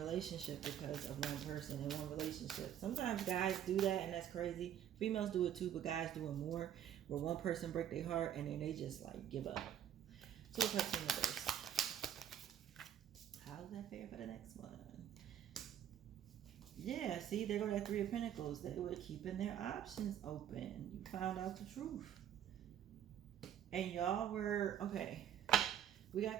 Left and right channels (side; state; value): left; quieter; 10.1 dB